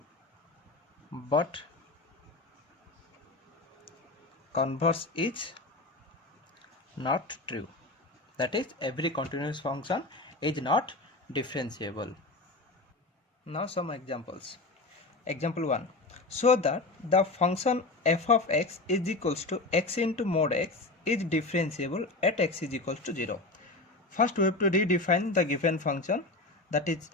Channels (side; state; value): right; quieter; 3.2 dB